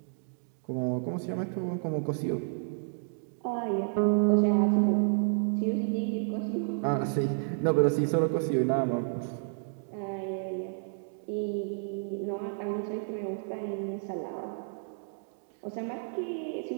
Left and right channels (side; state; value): left; silent; digital silence